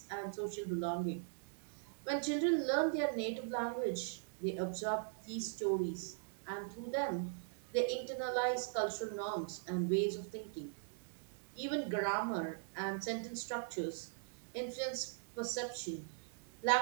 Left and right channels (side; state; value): left; silent; digital silence